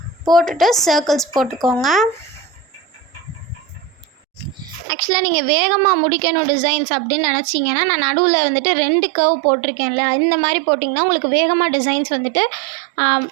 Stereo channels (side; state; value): left; drops out; at 4.9 s